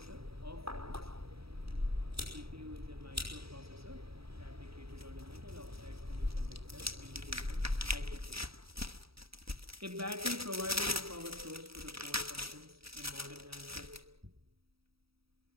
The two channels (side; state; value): left; late; 0.76 ms